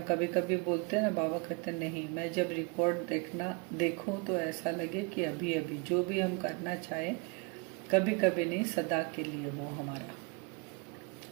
कभी कभी बोलते हैं ना, बाबा कहते हैं नहीं, मैं जब रिकॉर्ड देखूं तो ऐसा लगे कि अभी अभी जो भी हम करना चाहें, कभी कभी नहीं, सदा के लिए हो हमारा।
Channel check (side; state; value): left; quieter; 30.2 dB